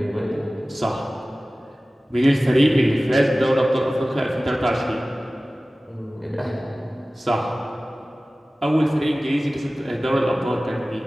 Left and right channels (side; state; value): both; normal; correlation 0.97